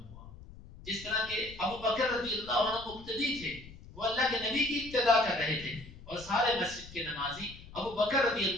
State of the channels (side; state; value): left; noise; rumble, 17 dB below the sound